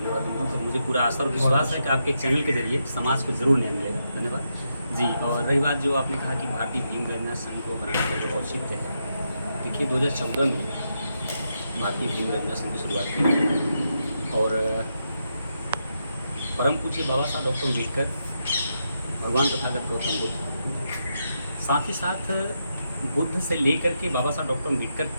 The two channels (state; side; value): inverted; both; correlation -0.83